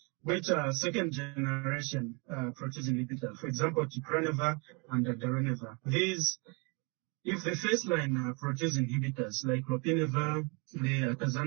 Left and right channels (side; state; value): left; quieter; 32.1 dB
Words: which are second generation protease inhibitors, for example, Glucuronidation and Dolutegravir. These, if the first line protease inhibitors like Lopinavir, the